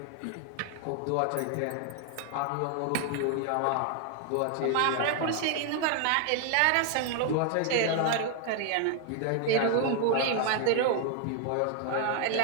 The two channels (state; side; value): different; both; correlation 0.00